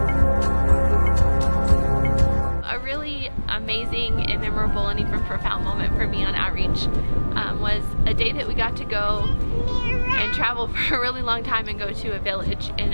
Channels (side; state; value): both; inverted; correlation -1.00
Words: A really amazing and memorable and even profound moment for me on outreach was a day that we got to go and travel for a really long time and go to a village in